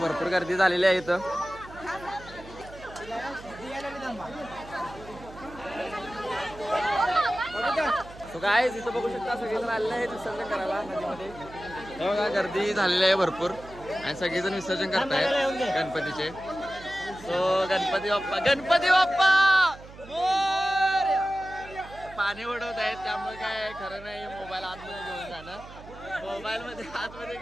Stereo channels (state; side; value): noise; right; hum, 18 dB below the sound